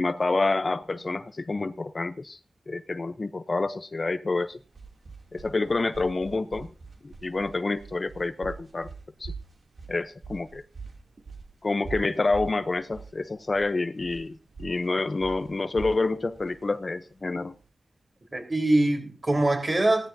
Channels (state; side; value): normal; both; correlation 0.96